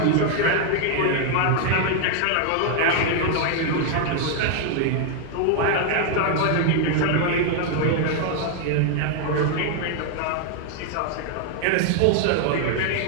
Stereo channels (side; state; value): both; different; correlation 0.00